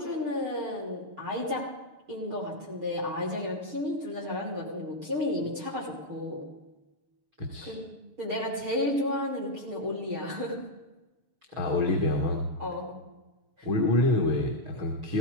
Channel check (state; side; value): late; left; 6.8 ms